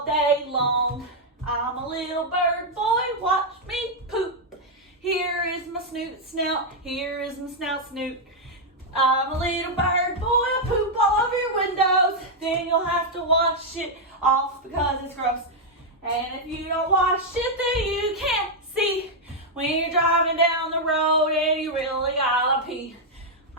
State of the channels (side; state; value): both; normal; correlation -0.02